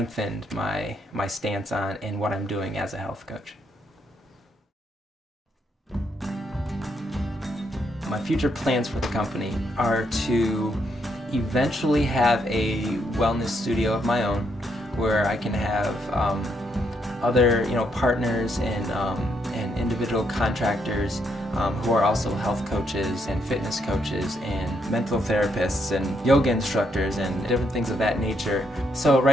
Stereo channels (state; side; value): normal; both; correlation 0.76